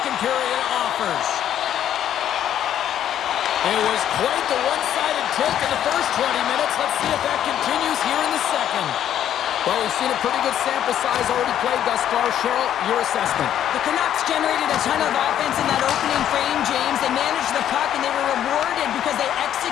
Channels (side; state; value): right; quieter; 10.6 dB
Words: period offers. It was quite the one-sided tilt in the first 20 minutes. Let's see if that continues here in the second. Well, we've seen a pretty good sample size already played thus far. Cheryl, your assessment. The Canucks generated a ton of offense in that opening frame, James. They managed the puck, and they were rewarded because they